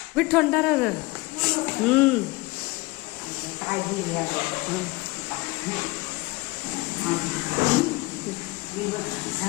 थंड काळजी घ्या.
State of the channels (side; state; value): right; quieter; 23.0 dB